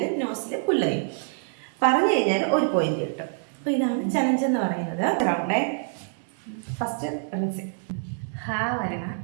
നോസിൽ പുല്ലയും, പറഞ്ഞു കഴിഞ്ഞാൽ ഒരു പോയിന്റ് കിട്ടും. അപ്പോൾ ഇതാണ് ചലഞ്ച് എന്ന് പറയുന്നത്. റൗണ്ടേ ഫസ്റ്റ് റിൻസി. ഹാ വരണ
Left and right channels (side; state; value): left; silent; digital silence